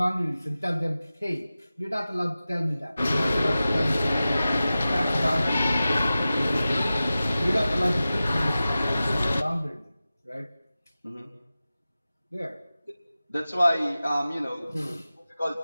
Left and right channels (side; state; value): both; inverted; correlation -0.95